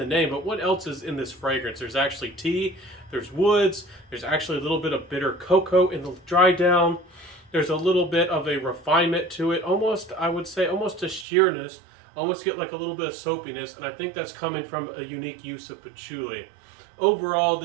name, but what else is in this fragrance? There's actually tea, there's woods, there's actually a little bit of bitter cocoa in the dry down. There's a little bit of a refinement to it, almost I would say almost a sheerness, almost get like a little bit of soapiness, and I think that's coming from a unique use of patchouli. Overall,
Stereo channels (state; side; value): drops out; left; at 11.2 s